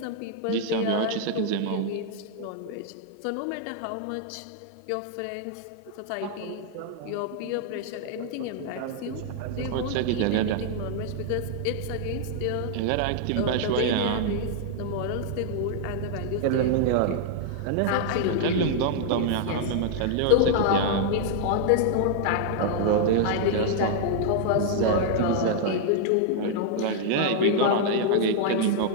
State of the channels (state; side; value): different; both; correlation -0.01